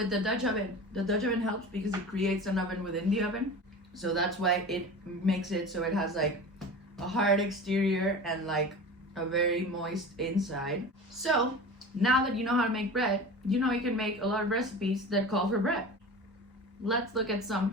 the Dutch oven helps because it creates an oven within the oven. So that's why it makes it so it has like a hard exterior and like a very moist inside. So now that you know how to make bread, you know you can make a lot of recipes that call for bread. Let's look at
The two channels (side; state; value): both; normal; correlation 0.34